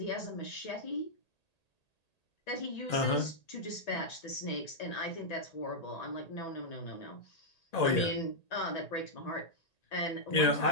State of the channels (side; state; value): right; late; 1.8 ms